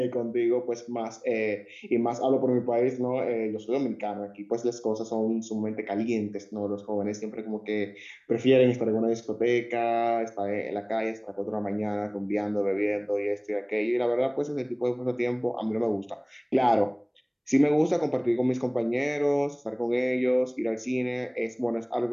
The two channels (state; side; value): identical; both; correlation 1.00